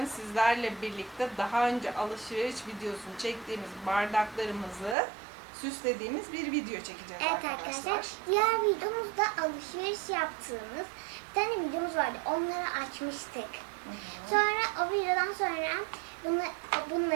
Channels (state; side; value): drops out; left; at 5.0 s